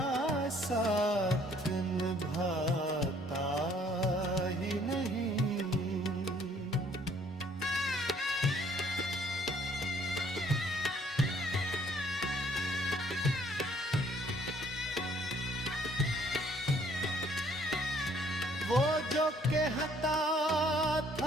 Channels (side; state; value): both; normal; correlation 0.61